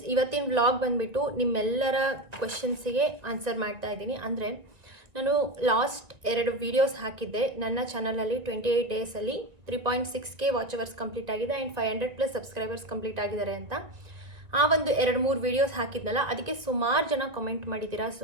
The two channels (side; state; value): left; late; 1.7 ms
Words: ಇವತ್ತಿನ ವ್ಲಾಗ್ ಬಂದುಬಿಟ್ಟು ನಿಮ್ಮೆಲ್ಲರ ಕ್ವೆಶನ್ಸಿಗೆ ಆನ್ಸರ್ ಮಾಡ್ತಾ ಇದ್ದೀನಿ. ಅಂದರೆ ನಾನು ಲಾಸ್ಟ್ 2 ವೀಡಿಯೋಸ್ ಹಾಕಿದ್ದೆ ನನ್ನ ಚಾನಲಲ್ಲಿ. 28 ಡೇಸಲ್ಲಿ 3.6K ವಾಚ್ ಅವರ್ಸ್ ಕಂಪ್ಲೀಟ್ ಆಗಿದೆ ಆ್ಯಂಡ್ 500+ ಸಬ್ಸ್ಕ್ರೈಬರ್ಸ್ ಕಂಪ್ಲೀಟ್ ಆಗಿದ್ದಾರೆ ಅಂತ. ಆ ಒಂದು 2-3 ವೀಡಿಯೋಸ್ ಹಾಕಿದ್ನಲ್ಲ, ಅದಕ್ಕೆ ಸುಮಾರು ಜನ ಕಮೆಂಟ್ ಮಾಡಿದ್ದೀರಾ,